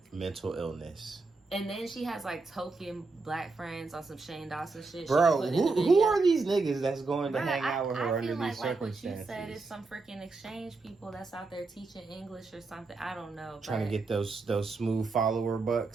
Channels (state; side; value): quieter; left; 3.8 dB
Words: mental illness. And then she has like token black friends on some Shane Dawson shit. Bro, who are these niggas that's going to hang out with her under these circumstances? Like what you said is some freaking exchange people that's out there teaching English or something. I don't know. Trying to get those smooth follower